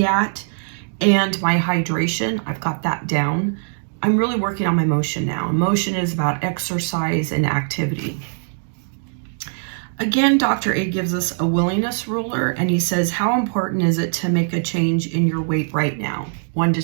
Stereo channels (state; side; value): silent; left; digital silence